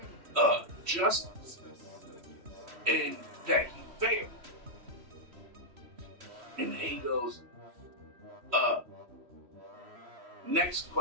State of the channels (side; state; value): left; late; 3.1 ms